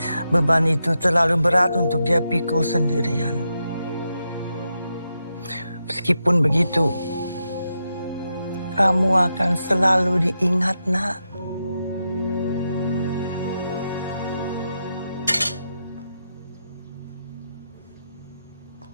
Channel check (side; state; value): both; inverted; correlation -0.86